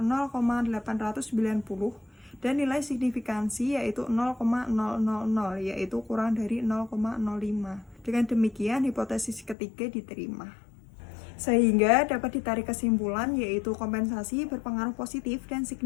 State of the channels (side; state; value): right; drops out; at 9.6 s